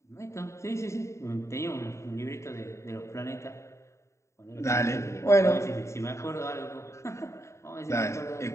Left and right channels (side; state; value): right; late; 0.14 ms